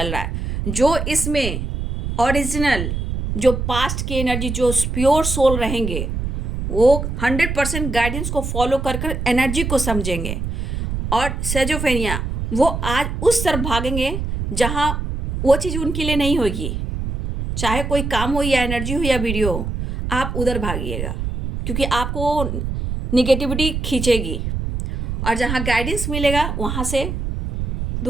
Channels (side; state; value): right; noise; rumble, 3 dB below the sound